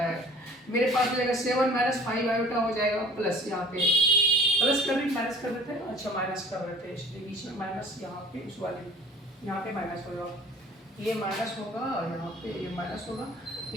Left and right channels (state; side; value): normal; both; correlation 0.48